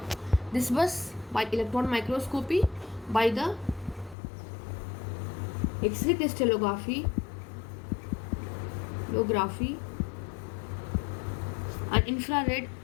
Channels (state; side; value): drops out; right; at 4.2 s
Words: This was by electron microscopy, by the X-ray crystallography, and infrared